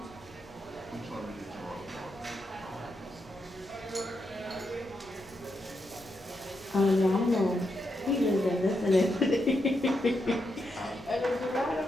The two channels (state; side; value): normal; both; correlation 0.83